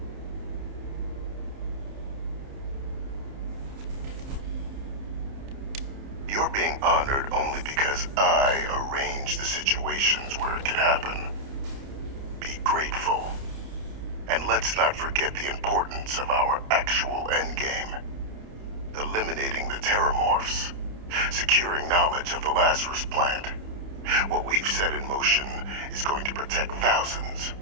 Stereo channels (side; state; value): left; late; 29 ms